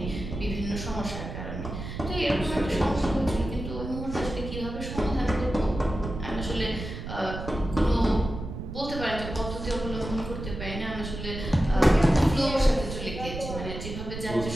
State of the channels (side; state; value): right; noise; rumble, 8 dB below the sound